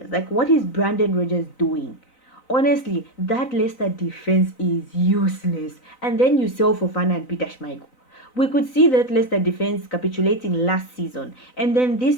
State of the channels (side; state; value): right; late; 3.9 ms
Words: Like, what is Brandon Rodgers doing? Honestly, that Leicester defense is useless. And then you sell Fofana and Peter Schmeichel. We could see that Leicester defense capitulating last season, and then